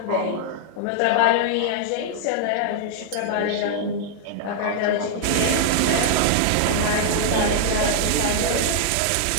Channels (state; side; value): different; both; correlation -0.01